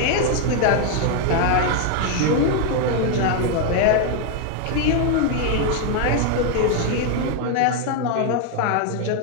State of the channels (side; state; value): both; different; correlation 0.00